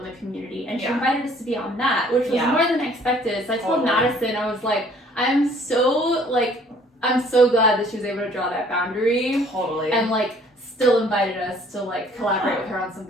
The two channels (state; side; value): normal; both; correlation 0.57